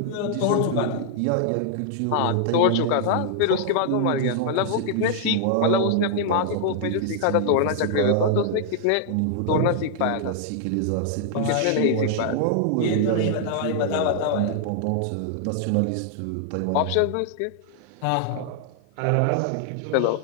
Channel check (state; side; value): different; both; correlation -0.01